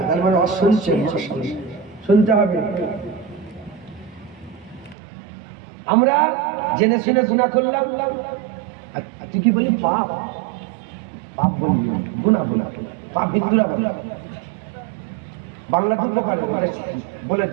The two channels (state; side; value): drops out; left; at 5.0 s